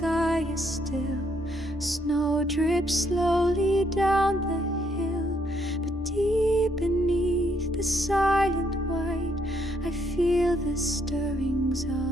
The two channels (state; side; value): normal; both; correlation 0.72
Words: is still. Snow drips slowly down the hill, but deep beneath the silent white, I feel the stirrings